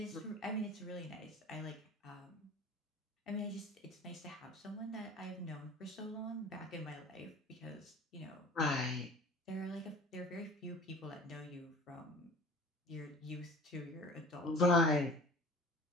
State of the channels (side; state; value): both; normal; correlation 0.43